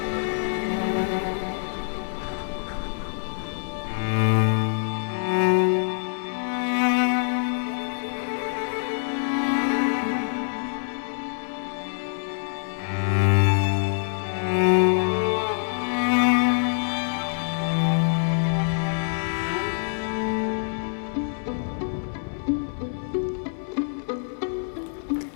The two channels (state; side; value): silent; right; 61 dB below the other